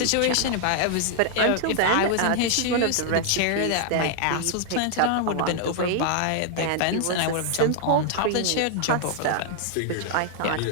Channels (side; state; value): both; different; correlation 0.00